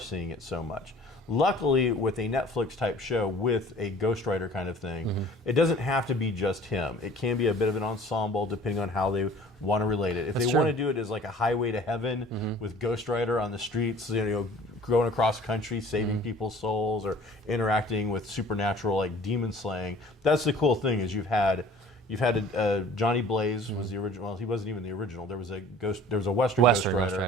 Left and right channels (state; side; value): normal; both; correlation 0.48